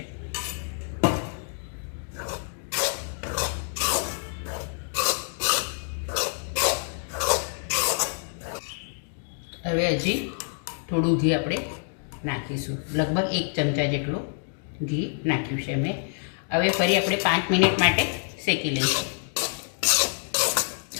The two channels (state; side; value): silent; right; 59 dB below the other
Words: હવે હજી થોડું ઘી આપણે નાખીશું, લગભગ 1 ચમચા જેટલું ઘી નાખ્યું છે મેં। હવે ફરી આપણે 5 મિનિટ માટે શેકી લઈશું।